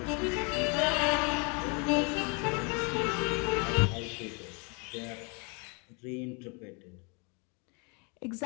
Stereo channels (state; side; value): quieter; right; 33.0 dB